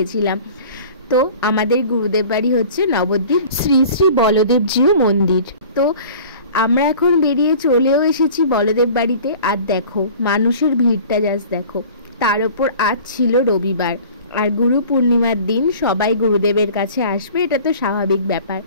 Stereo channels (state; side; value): inverted; both; correlation -0.44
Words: তো আমাদের গুরুদেব বাড়ি হচ্ছে নবদ্বীপ শ্রী শ্রী বলদেবজিউ মন্দির। তো আমরা এখন বেরিয়ে চলেও এসেছি বলদেব বাড়িতে। আর দেখো মানুষের ভিড়টা জাস্ট দেখো। তার ওপর আজ ছিল রবিবার, আর গুরু পূর্ণিমার দিন সবাই গুরুদেবের কাছে আসবে, এটা তো স্বাভাবিক ব্যাপার।